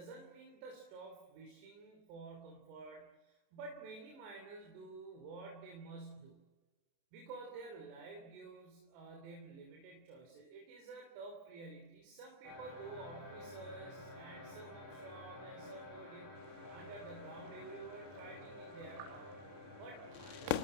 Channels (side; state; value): left; late; 30 ms